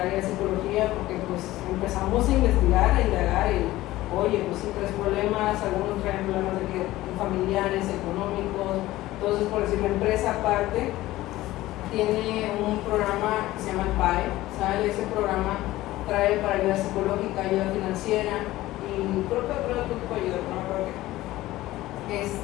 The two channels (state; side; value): quieter; right; 16.7 dB